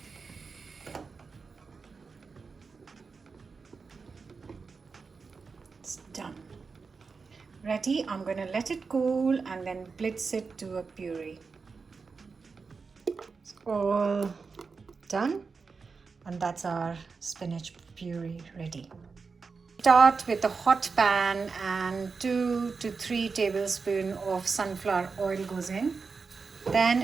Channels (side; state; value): left; quieter; 4.8 dB